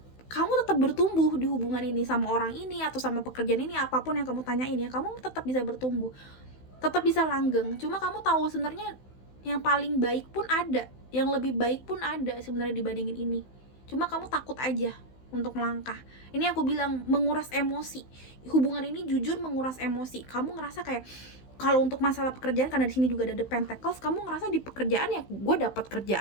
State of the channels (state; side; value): late; right; 16 ms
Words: kamu tetap bertumbuh di hubungan ini, sama orang ini atau sama pekerjaan ini, apapun yang kamu tanyain ya, kamu tetap bisa bertumbuh, tetap bisa langgeng. Cuma kamu tahu sebenarnya yang paling baik pun ada, yang lebih baik pun ada sebenarnya dibandingin ini. Cuma kamu takut aja untuk melangkah. Ini aku bilang menguras emosi. Hubungan ini jujur menguras emosi. Kamu ngerasa kayak, kalau untuk masalah pekerjaan, karena di sini juga ada the Pentacles, kamu ngerasa di pekerjaan ya, gue dapat